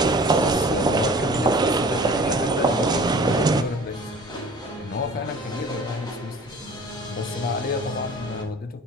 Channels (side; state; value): both; normal; correlation 0.45